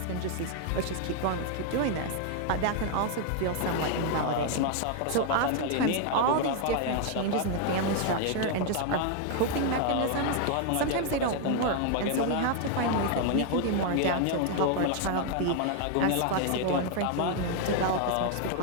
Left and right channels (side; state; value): both; different; correlation 0.00